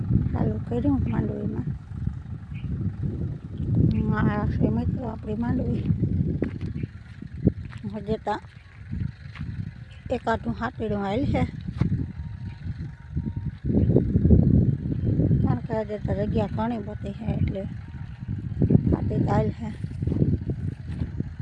चालू कर्यु मांडवी में। मित्रों अपनी मांडवी हजे तो एकादू हाथीड़ू आयल है कारण के हजे तो जगह घनी बधी है एटले हाथी आयल है।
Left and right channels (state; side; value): identical; both; correlation 1.00